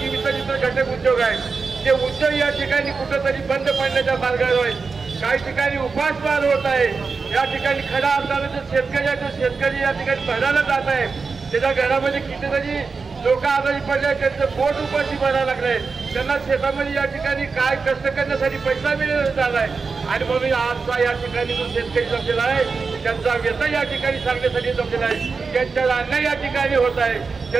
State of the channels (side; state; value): left; quieter; 4.7 dB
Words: घटक उद्योग आहेत ते उद्योग या ठिकाणी कुठेतरी बंद पडण्याच्या मार्गावर आहेत। काही ठिकाणी उपासमार होत आहे। या ठिकाणी खऱ्या अर्थाने जो शेतकरी आहे तो शेतकरी या ठिकाणी भरायला जात आहे, त्याच्या घरामध्ये कितीतरी लोक आजारी पडले, त्यांचं पोट उपाशी भरायला लागलंय, त्यांना शेतामध्ये या ठिकाणी काय कष्ट करण्यासाठी पैसा मिळाला झालाय आणि म्हणून आजचा या ठिकाणी जो शेतकरी जमलेला आहे त्यांचा व्यथा या ठिकाणी सांगण्यासाठी जमलेला आहे, त्यांच्या अन्याय या ठिकाणी होत आहे,